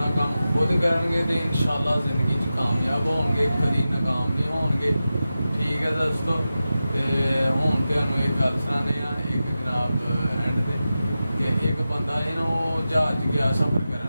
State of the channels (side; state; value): both; inverted; correlation -0.93